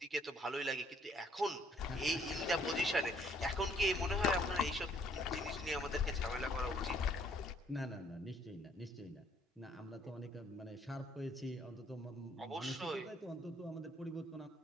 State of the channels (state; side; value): normal; both; correlation 0.63